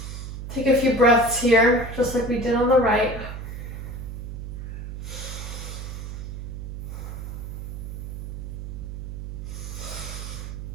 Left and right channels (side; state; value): right; noise; hum, 7 dB below the sound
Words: Take a few breaths here, just like we did on the right.